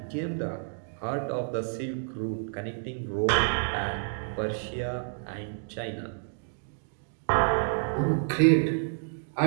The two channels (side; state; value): left; silent; digital silence